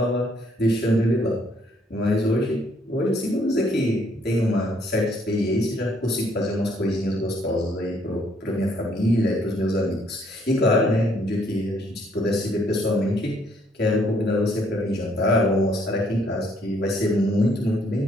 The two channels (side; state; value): both; normal; correlation 0.67